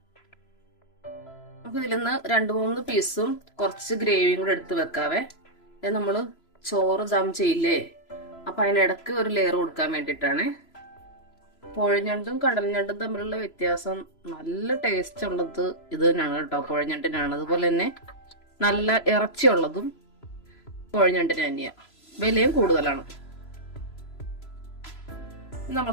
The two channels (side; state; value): right; late; 3.0 ms